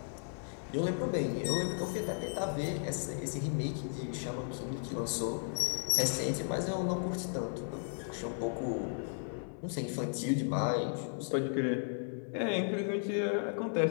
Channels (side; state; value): right; silent; digital silence